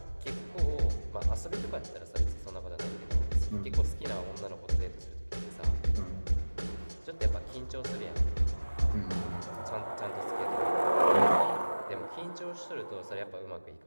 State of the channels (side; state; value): both; inverted; correlation -1.00